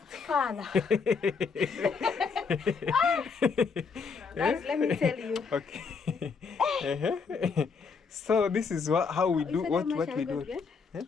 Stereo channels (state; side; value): quieter; right; 5.2 dB